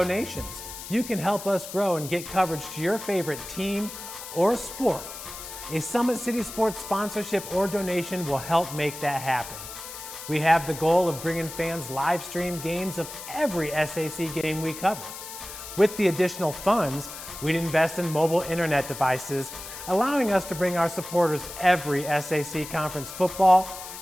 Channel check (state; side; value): noise; left; hiss, 11 dB below the sound